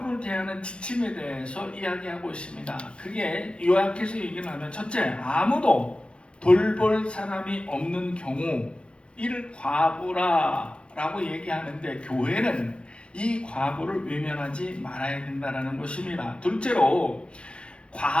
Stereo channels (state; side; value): late; right; 0.057 ms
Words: 대하는 지침에 대해서 이야기하고 있습니다. 그게 요약해서 얘기를 하면 첫째, 아무도 돌볼 사람이 없는 경우 이를 과부라라고 얘기하는데 교회는 이 과부를 외면하지 말아야 된다는 것입니다. 둘째로